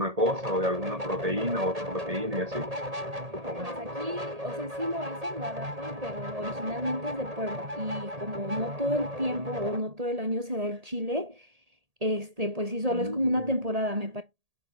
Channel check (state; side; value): late; left; 1.8 ms